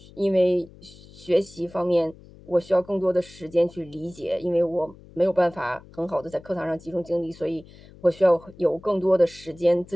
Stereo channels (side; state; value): left; noise; hum, 22 dB below the sound